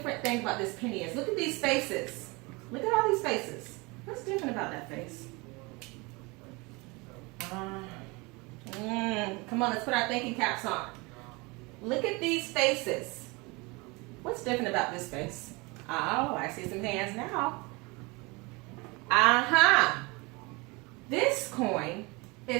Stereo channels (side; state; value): left; quieter; 26.2 dB